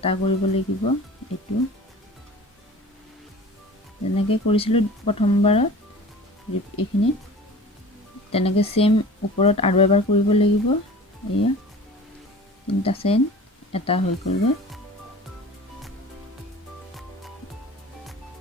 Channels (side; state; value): both; normal; correlation 0.40